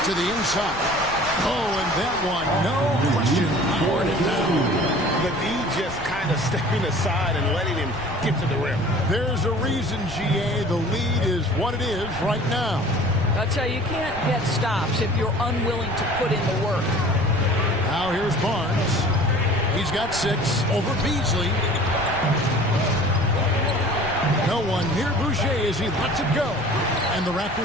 To the inside. Oh, and that one, no question, poured it down. The D just kind of stepping aside and letting him get to the rim. There's a reason, GA, the lead is what it is right now. I'll tell you, you can't get stops if you're unwilling to put in the work. Now here's Barnes. He's got 6 over Beasley. No one near Boucher as he lets it go. And the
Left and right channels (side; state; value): left; noise; rumble, 15 dB below the sound